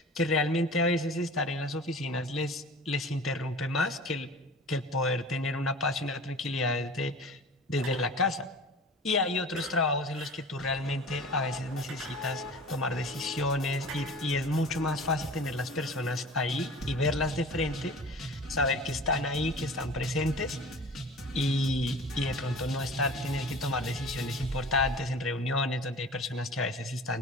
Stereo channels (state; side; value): normal; both; correlation 0.39